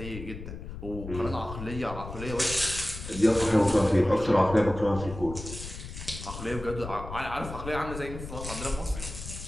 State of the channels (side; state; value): left; noise; rumble, 10 dB below the sound